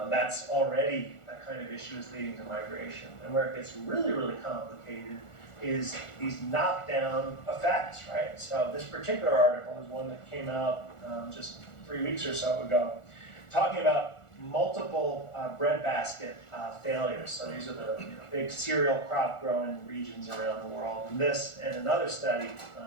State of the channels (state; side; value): late; right; 1.4 ms